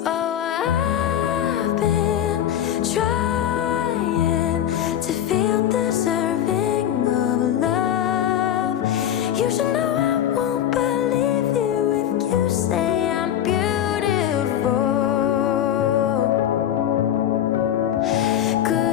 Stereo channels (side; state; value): right; quieter; 10.7 dB